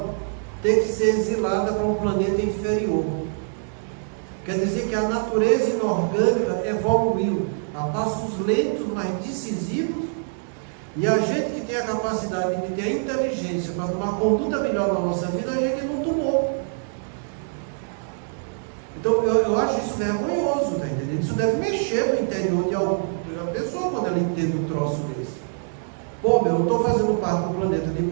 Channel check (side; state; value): left; silent; digital silence